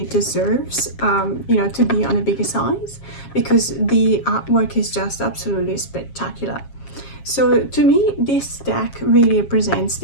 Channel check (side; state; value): right; late; 7.4 ms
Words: deserves you know, to be on a bigger size, because the artwork is just absolutely spectacular. So to me, this deck really represents